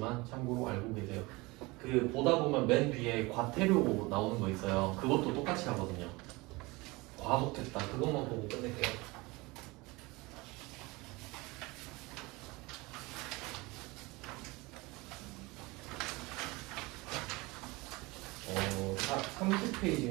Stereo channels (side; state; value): left; quieter; 23.5 dB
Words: 참고로 알고 계세요. 그 보다 보면 맨 뒤에 과태료 나오는 거 있어요. 그것도 똑같이 하거든요. 과속했다. 그것만 보고 끝낼게요. 다